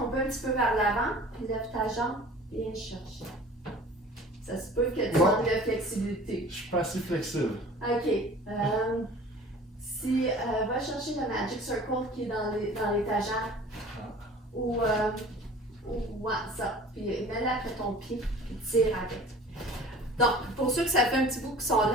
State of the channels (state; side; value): normal; both; correlation 0.45